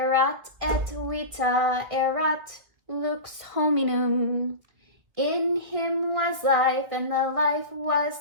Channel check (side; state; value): left; late; 2.0 ms